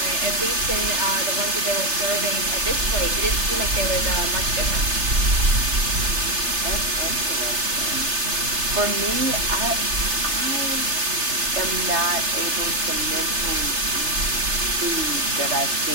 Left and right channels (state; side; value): late; left; 3.3 ms